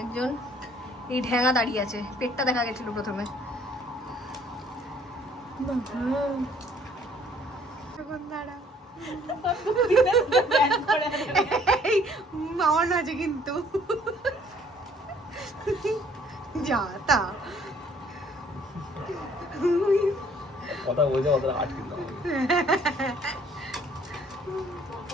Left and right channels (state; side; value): normal; both; correlation 0.59